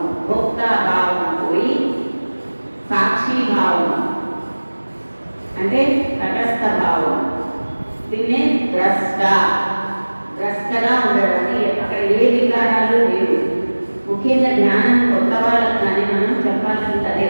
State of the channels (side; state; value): both; inverted; correlation -1.00